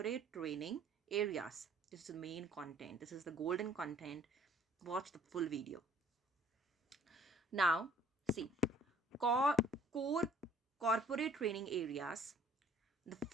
training areas. This is the main content. This is the golden content. Watch the full video. Now, see, core corporate training areas. The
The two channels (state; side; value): normal; both; correlation 0.56